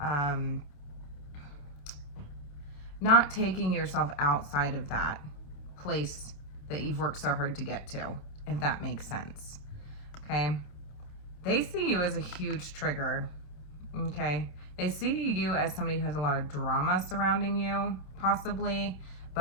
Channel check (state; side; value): late; right; 28 ms